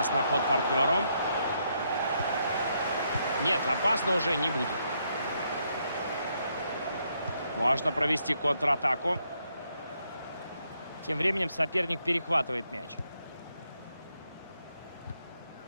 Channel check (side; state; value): both; inverted; correlation -0.76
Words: на ход партнеру. Нет, опасно уже не будет. Можно провести контратаку. Тем временем соперник перехватывает мяч.